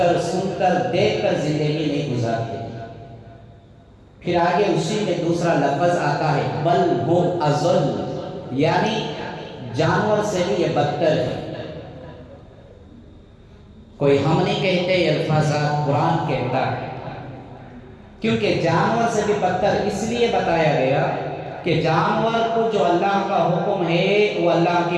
سن کر، دیکھ کر زندگی نہیں گزارتے۔ پھر آگے اسی میں دوسرا لفظ آتا ہے بل ہم اضل، یعنی جانور سے بھی یہ بدتر ہے۔ کوئی ہم نہیں کہتے، یہ الفاظات قرآن کہتا ہے، کیونکہ جانور سے بھی بدتر اس لیے بتایا گیا کہ جانور کو جو اللہ کا حکم ہے وہ اللہ کی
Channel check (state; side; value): identical; both; correlation 1.00